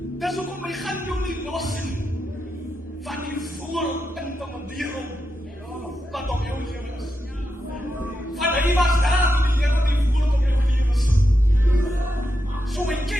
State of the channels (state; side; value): normal; both; correlation 0.86